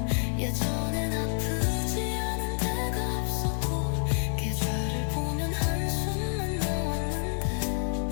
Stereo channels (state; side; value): silent; right; 59 dB below the other